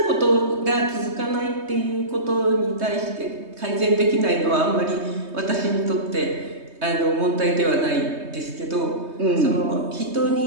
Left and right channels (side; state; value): left; late; 3.2 ms